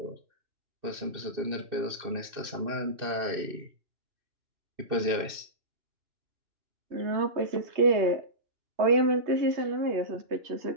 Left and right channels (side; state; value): left; late; 2.6 ms